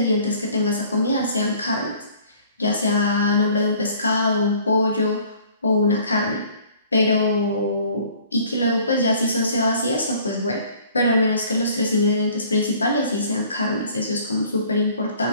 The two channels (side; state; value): both; inverted; correlation -0.54